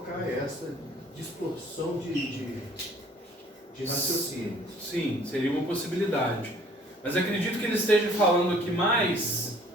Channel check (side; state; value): both; normal; correlation 0.56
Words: essa distorção de raciocínio. Sim, seria uma possibilidade. Mas acredito que ele esteja falando aqui mais